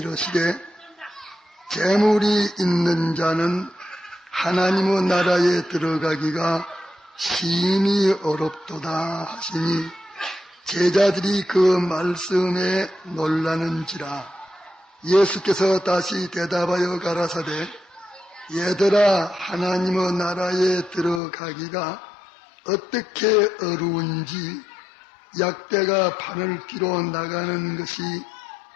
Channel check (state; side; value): drops out; right; at 21.2 s